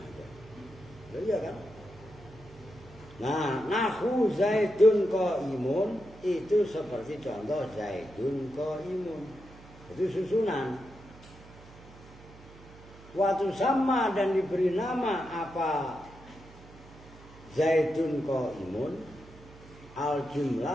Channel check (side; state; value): right; noise; hum, 20 dB below the sound